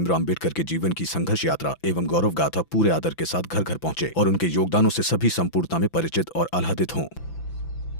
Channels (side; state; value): right; late; 6.0 ms